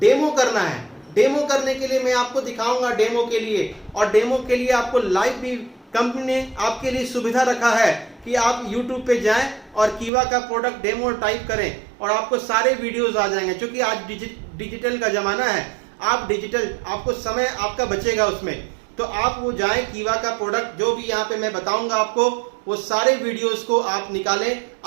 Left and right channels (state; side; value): drops out; left; at 10.1 s